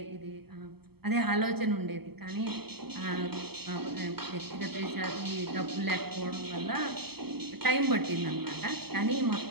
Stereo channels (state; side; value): late; left; 0.96 ms